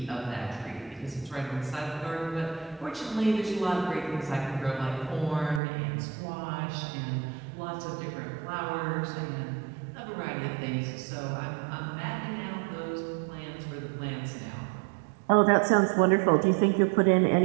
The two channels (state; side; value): drops out; left; at 5.6 s